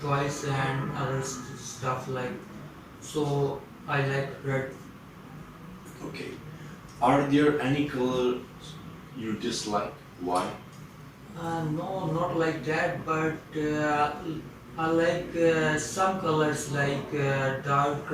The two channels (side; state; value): both; identical; correlation 1.00